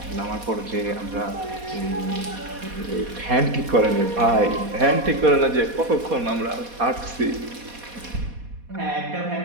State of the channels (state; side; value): late; left; 4.2 ms